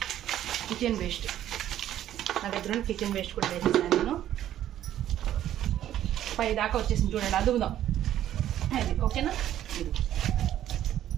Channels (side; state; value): left; quieter; 11.9 dB